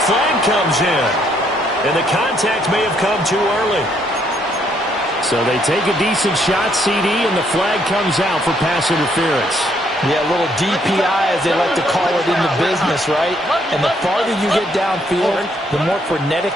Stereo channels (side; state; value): both; normal; correlation 0.70